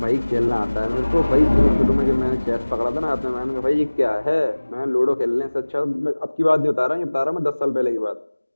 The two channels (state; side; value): inverted; both; correlation -1.00